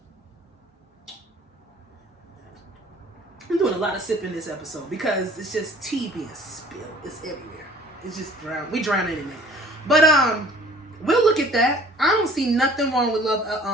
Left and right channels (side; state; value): both; normal; correlation 0.51